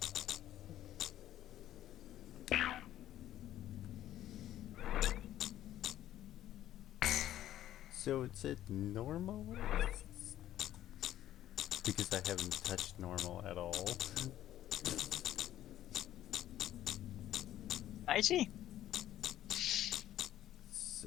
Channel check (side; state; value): right; quieter; 12.7 dB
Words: So it's at normal? Because I haven't touched normal at all. I see.